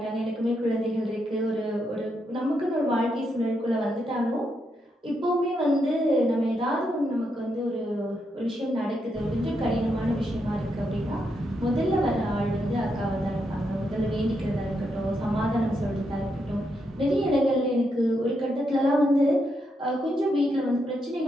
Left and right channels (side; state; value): both; normal; correlation 0.81